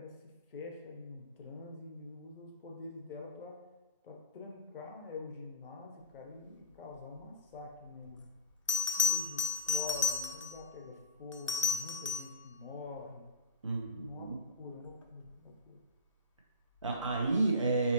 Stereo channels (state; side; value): inverted; both; correlation -0.32